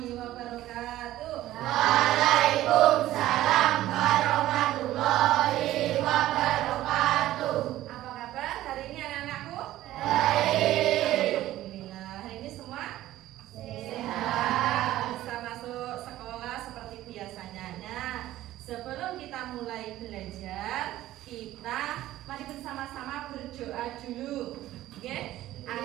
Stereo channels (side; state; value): left; quieter; 14.7 dB